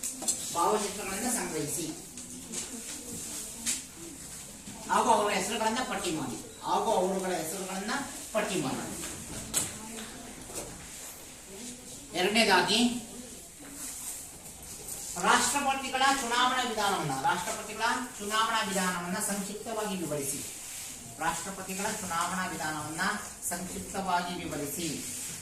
ಭಾವಚಿತ್ರಗಳನ್ನು ಸಂಗ್ರಹಿಸಿ ಹಾಗೂ ಅವರ ಹೆಸರುಗಳನ್ನ ಪಟ್ಟಿ ಮಾಡಿ. ಎರಡನೇದಾಗಿ ರಾಷ್ಟ್ರಪತಿಗಳ ಚುನಾವಣಾ ವಿಧಾನವನ್ನ ಸಂಕ್ಷಿಪ್ತವಾಗಿ ವಿವರಿಸಿ. ರಾಷ್ಟ್ರಪತಿಗಳ ಚುನಾವಣಾ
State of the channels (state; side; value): identical; both; correlation 1.00